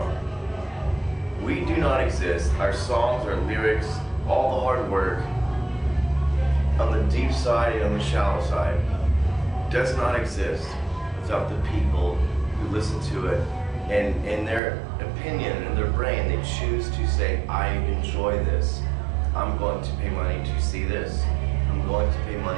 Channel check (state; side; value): drops out; left; at 14.6 s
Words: We do not exist. Our songs, our lyrics, all the hard work on the deep side and on the shallow side does not exist without the people who listen to it and in their opinion, in their brain, they choose to say, I enjoy this. I'm going to pay money to see this. I'm going to pay